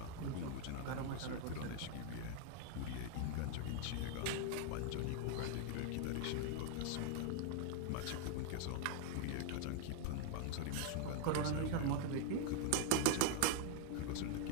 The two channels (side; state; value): both; different; correlation 0.00